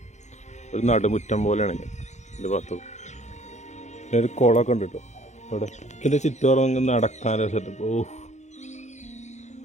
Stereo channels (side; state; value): right; late; 0.34 ms